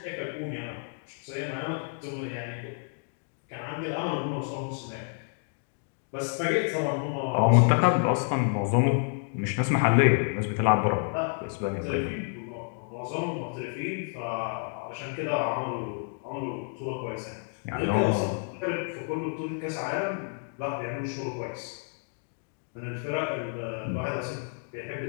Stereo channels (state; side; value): silent; right; 58 dB below the other